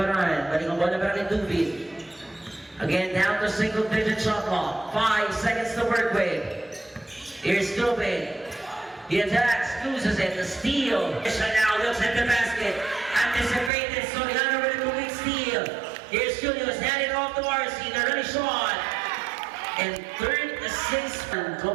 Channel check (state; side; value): drops out; left; at 13.7 s